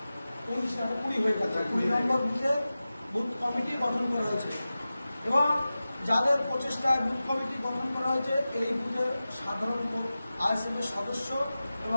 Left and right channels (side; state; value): both; inverted; correlation -0.95